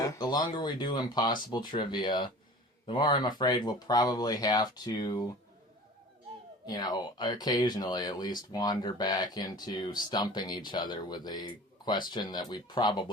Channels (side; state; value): both; normal; correlation 0.41